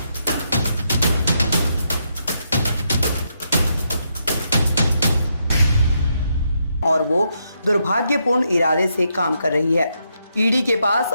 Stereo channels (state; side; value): inverted; both; correlation -0.79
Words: और वो दुर्भाग्यपूर्ण इरादे से काम कर रही है। ईडी के पास